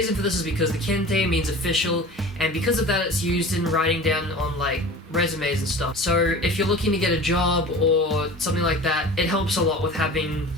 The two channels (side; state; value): both; normal; correlation 0.38